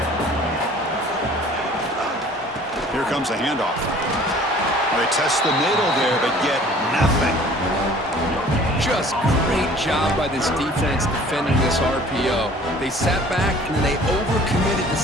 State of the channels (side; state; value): both; normal; correlation 0.50